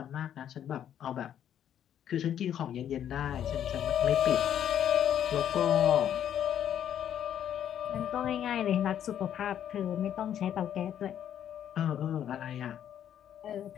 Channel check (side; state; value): right; quieter; 10.0 dB